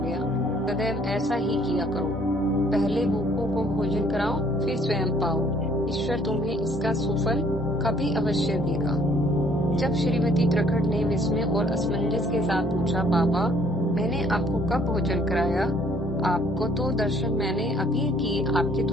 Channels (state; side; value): normal; both; correlation 0.61